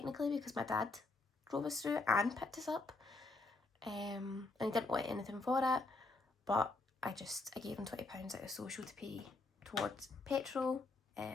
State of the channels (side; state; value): right; quieter; 3.3 dB